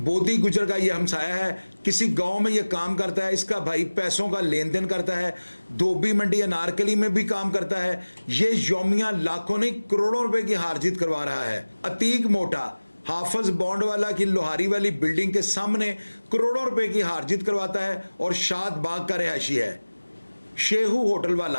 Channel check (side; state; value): both; inverted; correlation -1.00